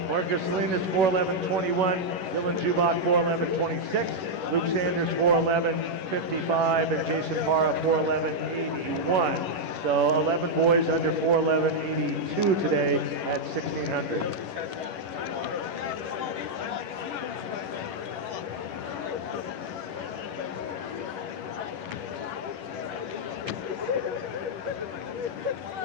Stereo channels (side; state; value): left; late; 11 ms